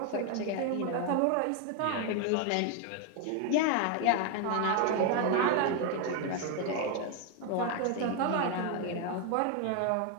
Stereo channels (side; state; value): both; different; correlation 0.01